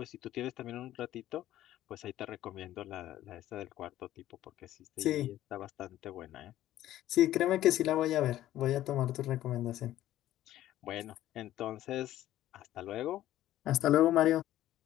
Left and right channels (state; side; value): quieter; right; 13.7 dB